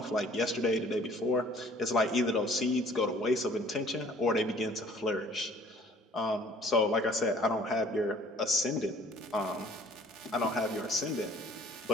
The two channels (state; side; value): normal; both; correlation 0.54